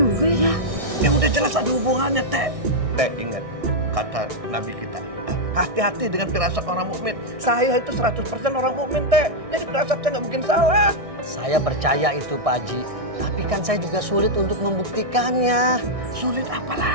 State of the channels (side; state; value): left; late; 1.6 ms